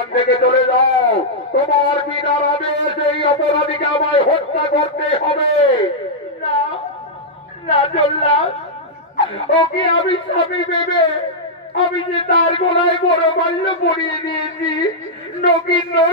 থেকে চলে যাও, তোমার বিনার আদেশ এই অপরাধীকে আমায় হত্যা করতে হবে। না জল্লাদ, ওকে আমি স্বামী ভেবে আমি যে তার গলায় বড় মাল্য পরিয়ে দিয়েছি,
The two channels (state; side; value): normal; both; correlation -0.07